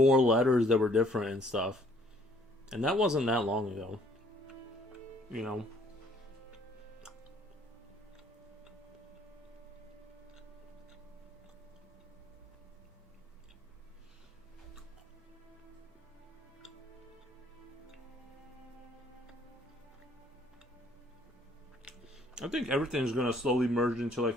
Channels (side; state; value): both; normal; correlation 0.62